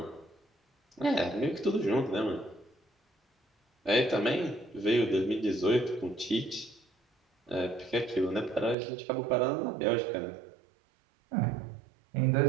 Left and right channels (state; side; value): drops out; left; at 8.8 s